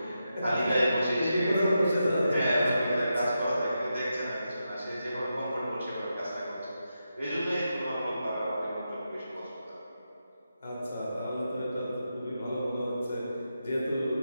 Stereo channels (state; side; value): inverted; both; correlation -0.87